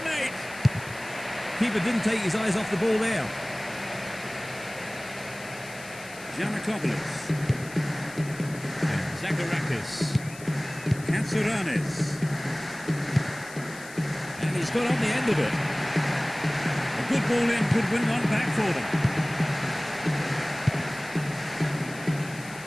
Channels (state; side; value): noise; left; hiss, 17 dB below the sound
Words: Keeper didn't take his eyes off the ball there. Giannakopoulos. And Zacharakis. Katsouranis. And he's got on the end of it. A good ball in could win one back for them.